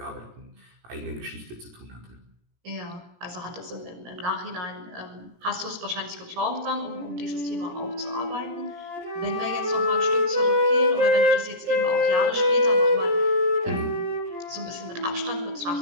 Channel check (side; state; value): left; late; 17 ms